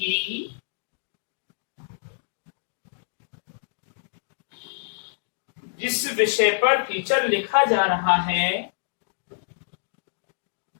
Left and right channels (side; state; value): right; silent; digital silence